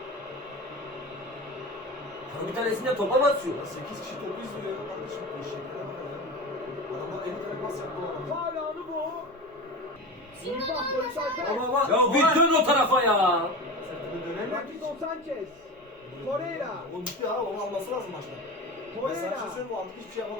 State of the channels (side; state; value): both; normal; correlation 0.28